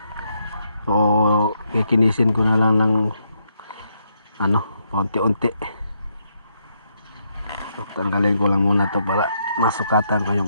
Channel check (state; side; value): inverted; both; correlation -0.78